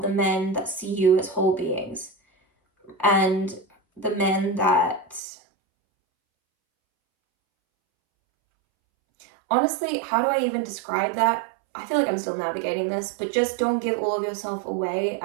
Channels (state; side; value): drops out; left; at 5.2 s